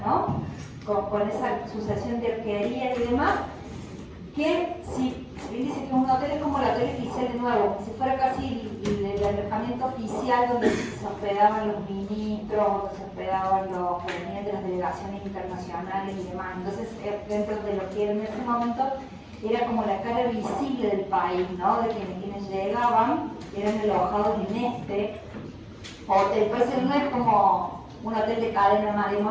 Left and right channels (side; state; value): both; identical; correlation 1.00